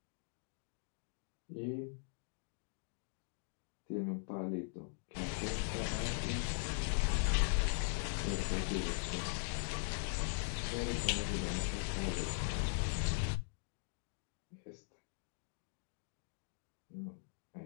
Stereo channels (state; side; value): silent; right; digital silence